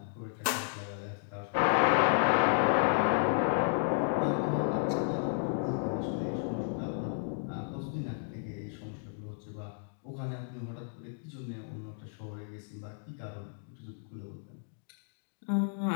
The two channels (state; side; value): silent; right; digital silence